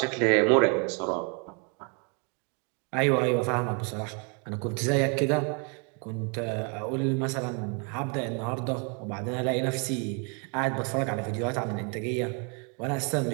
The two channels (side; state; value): left; quieter; 36.4 dB